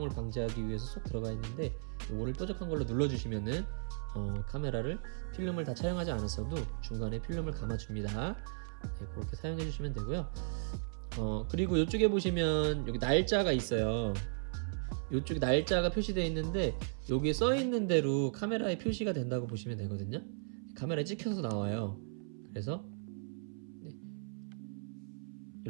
방지하기 위해서 쏙 들어가 있는데, 요거를 뾰족한 걸로 눌러주시면은 카메라를 필름을 다 촬영하지 않았어도 중간에 필름을 감아줍니다. 네, 그렇게 사용해 주시면 되고요. 그리고 이쪽에 보시면 여기 날짜가 있어요. 이쪽에 날짜가 표시되어 있는데, 여기에 써 있는 대로 카메라에 표시가 된다고 보시면 되거든요. 카메라에 찍혀서 나와요. 그래서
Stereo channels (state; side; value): silent; left; 54 dB below the other